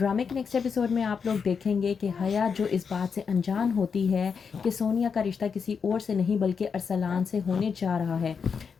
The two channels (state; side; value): quieter; right; 6.0 dB